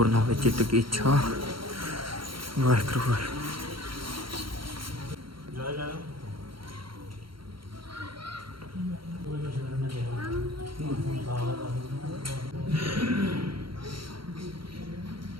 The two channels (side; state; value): left; late; 0.73 ms